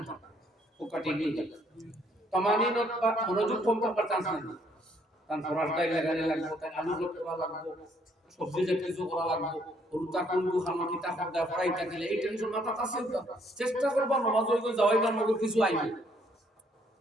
থাকে ও কাটিয়ে নিয়ে যাবে তমানিনত বা মনোযোগ কম থাকার চান্স নেই কারণ ফরাসটাই লাগানি লাগবে তাই আলু করা লাগবে সবজি যে কিছু করা লাগবে রুতা কোনটু খানো কিতা খরদা ফরাইটা দিলে এই টেনশন মাথা আছে চেষ্টা করবা নামাজ হইতে যাওয়াইবার মধ্যে কিছু আইবে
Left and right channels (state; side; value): normal; both; correlation 0.67